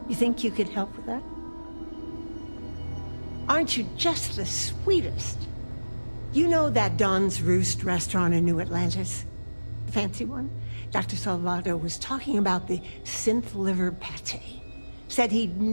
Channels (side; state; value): both; inverted; correlation -1.00